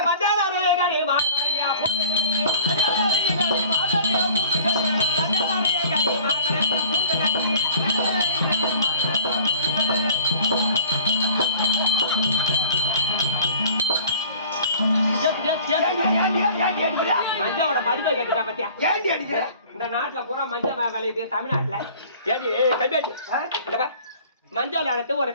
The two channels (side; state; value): both; inverted; correlation -0.49